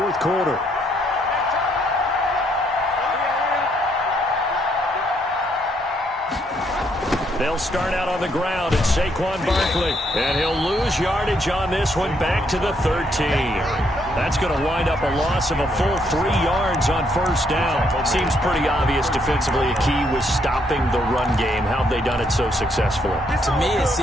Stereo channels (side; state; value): both; normal; correlation 0.72